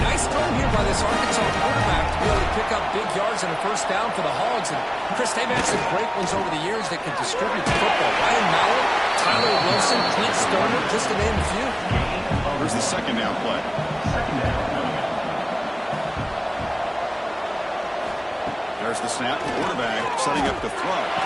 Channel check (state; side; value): identical; both; correlation 1.00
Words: nice throw here by this Arkansas quarterback to be able to pick up big yards and a first down for the Hogs. And Chris, they've had some great ones over the years that can distribute the football. Ryan Mallett, Tyler Wilson, Clint Stoner, just to name a few. Here's the second down play. There's the snap. Quarterback setting up the throw.